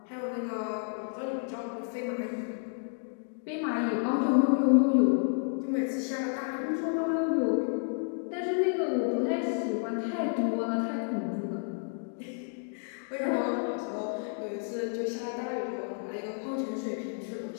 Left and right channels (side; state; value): right; silent; 57 dB below the other